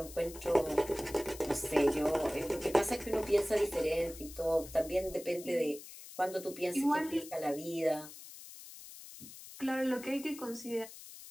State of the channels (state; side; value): noise; left; hiss, 15 dB below the sound